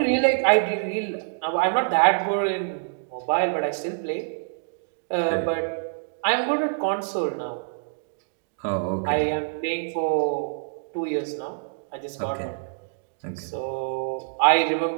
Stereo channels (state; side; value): silent; left; digital silence